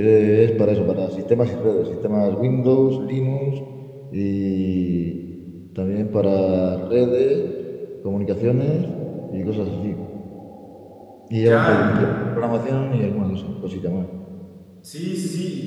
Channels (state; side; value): identical; both; correlation 1.00